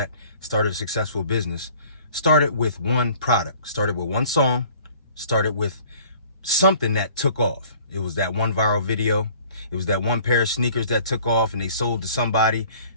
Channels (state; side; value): inverted; both; correlation -0.51